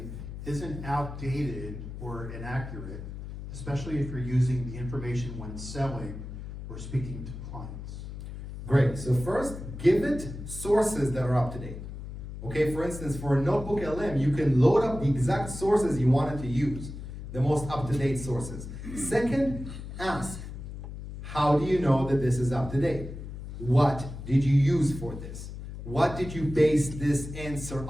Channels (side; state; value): left; noise; hum, 10 dB below the sound